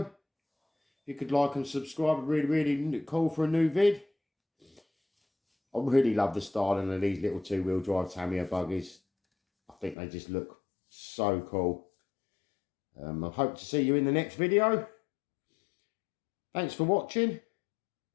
you could like and subscribe, I'd really cool for a new vid. I really love the styling of these little two-wheel drive Tamiya buggies. I think they just look so cool. I hope to see you in the next video. Thanks for watching.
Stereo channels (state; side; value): drops out; right; at 10.0 s